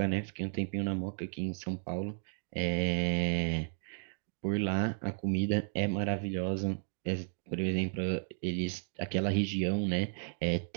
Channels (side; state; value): left; silent; 55 dB below the other